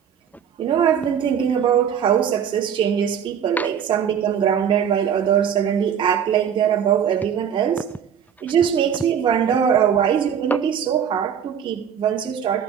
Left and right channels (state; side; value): quieter; left; 8.3 dB